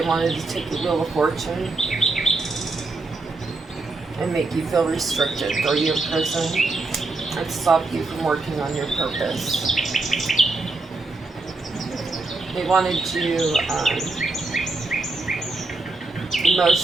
wanted to take the Wheel of Fortune and make you feel restricted, throw you in prison, and stop you from working on your purpose. They wanted you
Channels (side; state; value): left; quieter; 3.4 dB